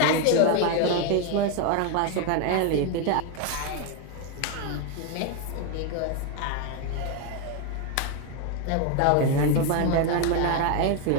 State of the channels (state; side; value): different; both; correlation 0.01